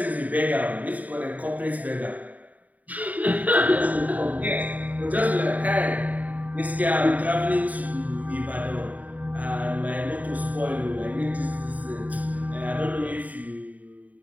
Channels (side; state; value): left; late; 0.074 ms